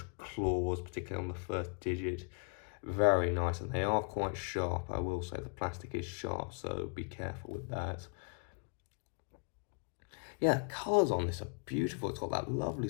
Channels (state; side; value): quieter; right; 39.0 dB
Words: claws, particularly on the first digit. Very nice, and they are quite sharp. I will say the plastic is sharp, so be careful with that. Yeah, the colours on this are beautiful. It's got that lovely